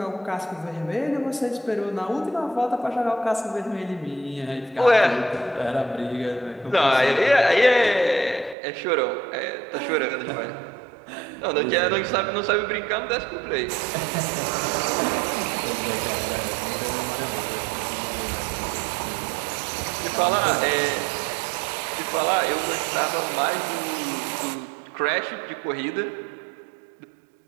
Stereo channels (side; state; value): left; drops out; at 8.6 s